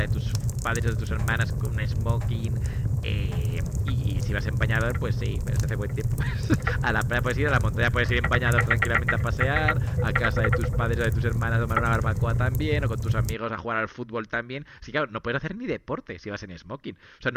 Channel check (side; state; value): both; identical; correlation 1.00